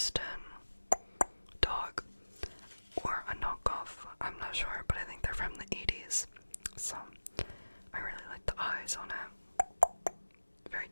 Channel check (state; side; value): inverted; both; correlation -1.00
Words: dog, or a knockoff. I'm not sure, but I think they're from the 80s. So I really like the eyes on it. Very